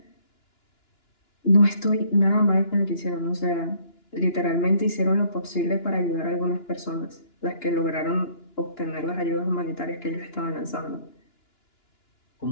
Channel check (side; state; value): right; late; 2.9 ms